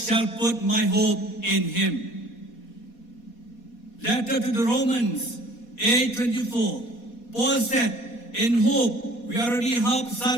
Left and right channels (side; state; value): right; late; 4.2 ms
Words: put my hope in Him. Letter to the Romans 8:24, Paul said, in hope we already have